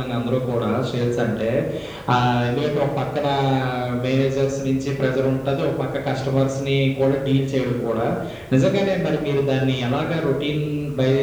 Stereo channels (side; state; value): both; identical; correlation 1.00